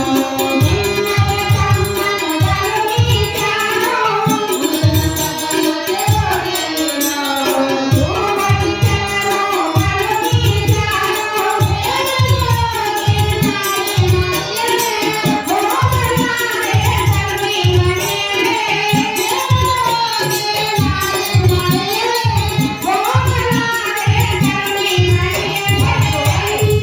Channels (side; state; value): both; identical; correlation 1.00